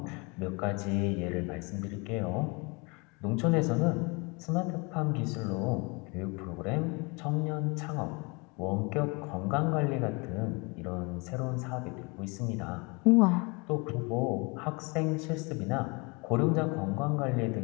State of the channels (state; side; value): quieter; right; 29.2 dB